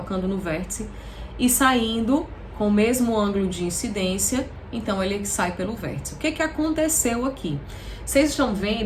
no vértice e saindo com o mesmo ângulo de incidência, então ele sai pelo vértice. O que que aconteceu aqui? Vocês estão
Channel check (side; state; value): both; identical; correlation 1.00